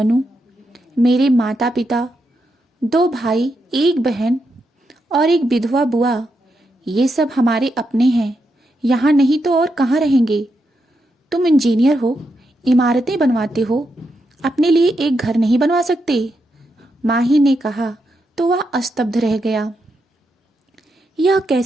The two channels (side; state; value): both; normal; correlation 0.83